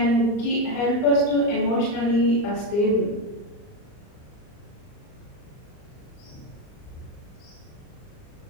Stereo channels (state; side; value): late; right; 39 ms